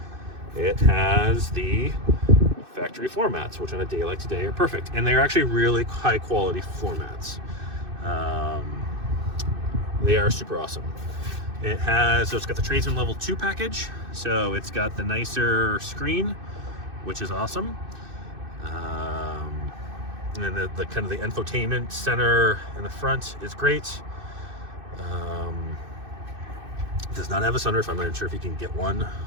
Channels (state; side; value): late; left; 2.6 ms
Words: It has the factory floor mats, which on a day like today are perfect, and they're actually really high quality floor mats. They are super awesome. It's got the Tradesman level 2 package, so it's got the nicer screen, which is awesome. And then the kind of the infotainment center in the front is great. Does not have a sunroof. I'm not even sure if you can get one